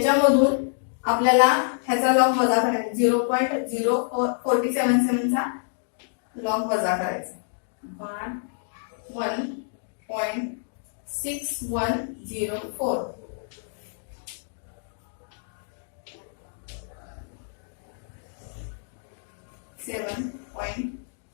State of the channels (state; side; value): silent; right; digital silence